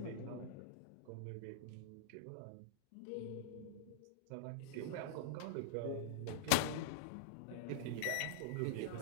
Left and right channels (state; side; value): different; both; correlation -0.02